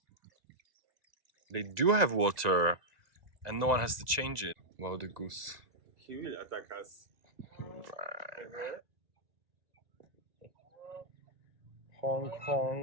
They do have water, and no one has to change it. Wow, the goose. He will attack us. Honk,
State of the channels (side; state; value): left; late; 1.9 ms